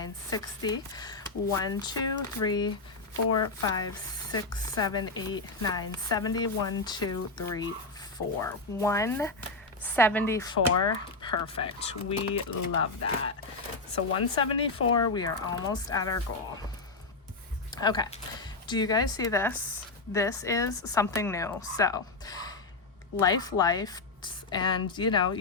60, 1, 2, 3, 4, 5, 6, 7, 8, 9, 70, 1, 2, 3, 4. 174, perfect. We love that. So 174, we are almost at our goal. Okay, Do you guys see this? This is something new. So life, and you know,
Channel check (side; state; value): right; quieter; 3.5 dB